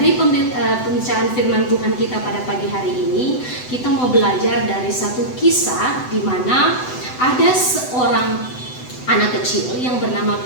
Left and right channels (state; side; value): late; right; 7.9 ms